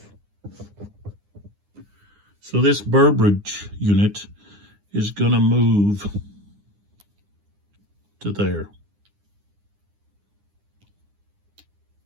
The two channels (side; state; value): left; late; 9.8 ms